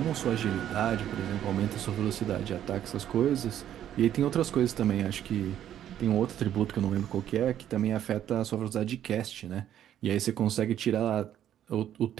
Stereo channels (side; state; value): left; quieter; 10.9 dB